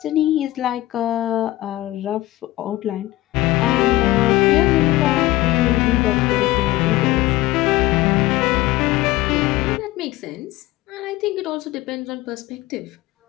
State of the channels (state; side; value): quieter; right; 17.0 dB